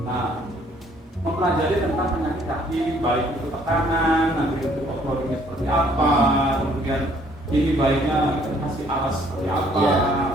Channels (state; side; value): normal; both; correlation 0.62